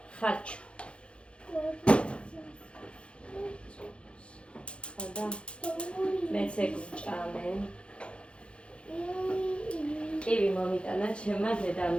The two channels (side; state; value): right; late; 0.058 ms